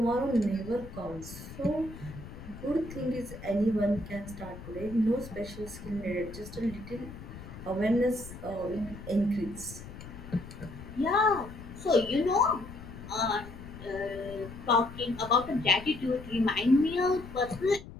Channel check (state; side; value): noise; left; rumble, 13 dB below the sound